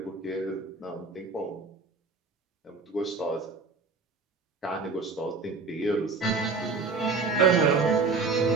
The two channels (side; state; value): left; quieter; 4.1 dB